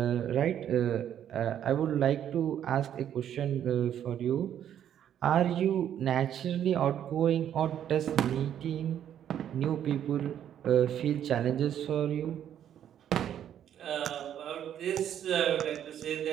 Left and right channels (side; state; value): left; quieter; 10.1 dB